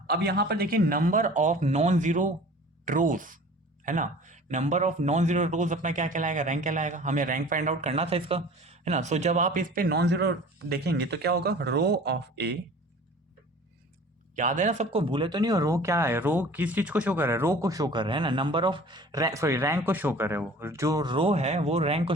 अब यहाँ पर देखिए नंबर ऑफ नॉन जीरो रोज, है ना, नंबर ऑफ नॉन जीरो रोज अपना क्या कहलाएगा, रैंक कहलाएगा। हमें रैंक फाइंड आउट करना था इसका, है ना। सो जब आप इस पे नॉन जीरो देखेंगे तो क्या होगा, रो ऑफ ए, याद है ना सबको, भूले तो नहीं हो, रो क्या है, रो किस चीज को शो कर रहा है, रो को शो कर रहा है ना, नंबर ऑफ सॉरी रैंक को शो कर रहा है, वो जो रो है वो रैंक को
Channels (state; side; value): normal; both; correlation 0.44